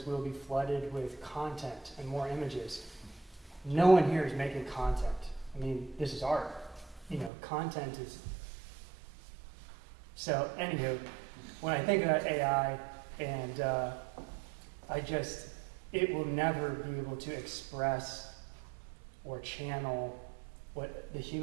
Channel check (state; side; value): drops out; left; at 7.3 s